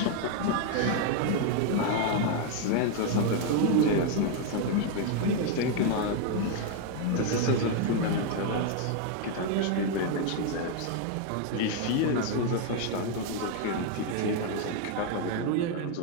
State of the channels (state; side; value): different; both; correlation 0.00